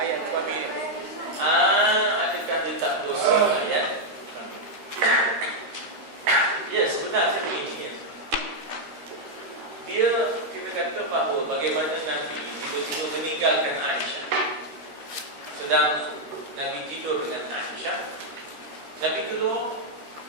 suami. Adakah dia tak dosa ya? Ya, sebenarnya begini ya. Dia, kita kata bahawa bagaimana Nabi tiba-tiba meninggalkan Aisyah. Sedang Nabi tidur dengan Aisyah, Nabi keluar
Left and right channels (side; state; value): left; late; 13 ms